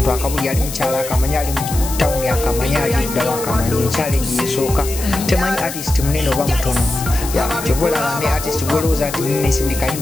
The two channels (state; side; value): noise; left; hiss, 9 dB below the sound